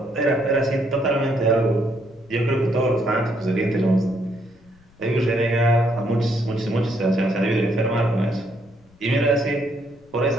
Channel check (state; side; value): noise; left; rumble, 29 dB below the sound